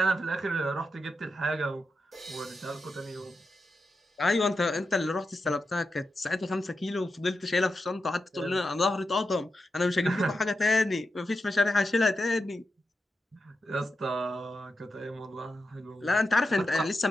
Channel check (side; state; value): both; normal; correlation 0.88